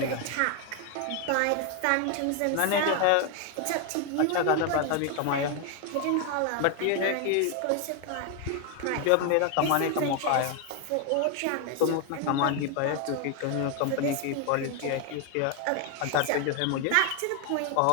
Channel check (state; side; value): different; both; correlation 0.01